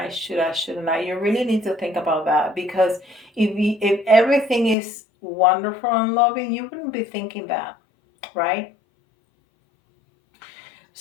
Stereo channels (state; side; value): drops out; right; at 4.8 s